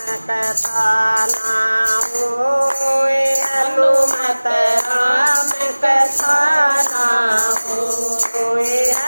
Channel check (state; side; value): inverted; both; correlation -1.00